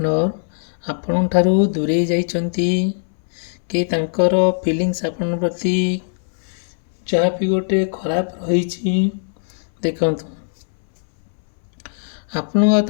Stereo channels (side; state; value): right; silent; 63 dB below the other